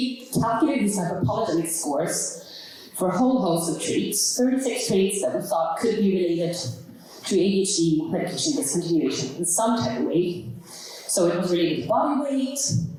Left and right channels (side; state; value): both; identical; correlation 1.00